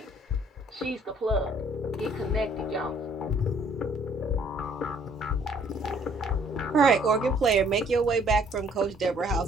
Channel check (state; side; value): normal; both; correlation 0.61